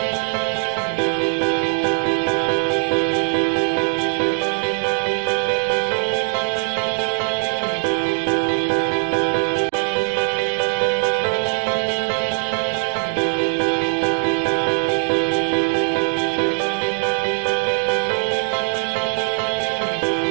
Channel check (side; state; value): left; silent; digital silence